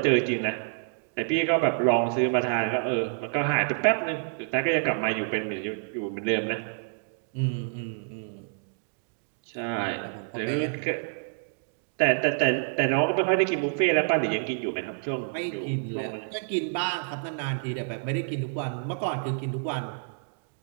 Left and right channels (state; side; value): silent; left; digital silence